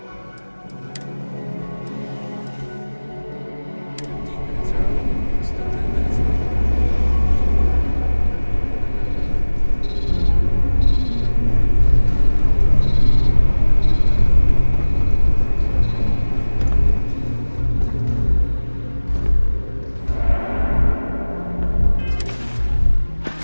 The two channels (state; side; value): inverted; both; correlation -1.00